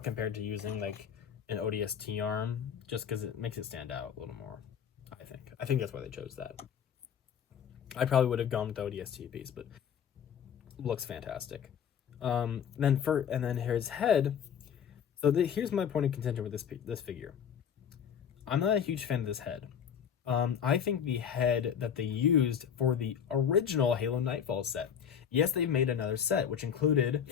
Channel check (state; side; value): quieter; right; 8.1 dB